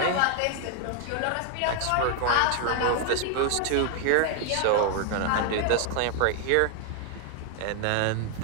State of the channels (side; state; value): both; different; correlation 0.00